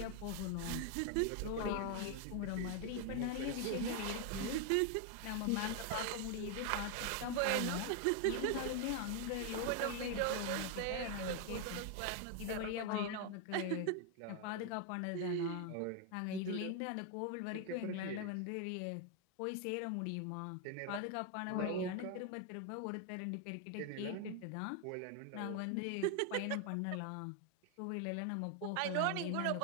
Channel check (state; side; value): different; both; correlation 0.01